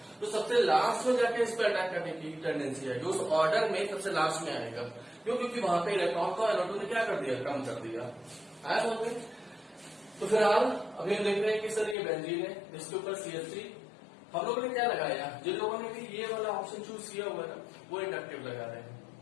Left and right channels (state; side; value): drops out; right; at 12.0 s